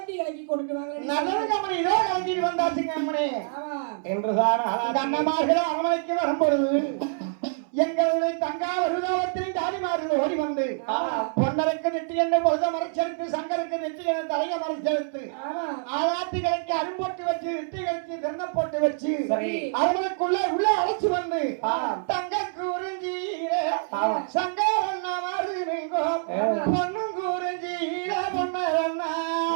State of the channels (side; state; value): left; silent; 61 dB below the other